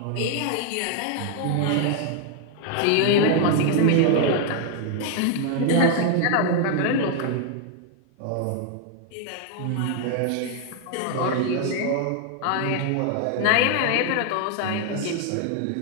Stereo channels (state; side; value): different; both; correlation 0.00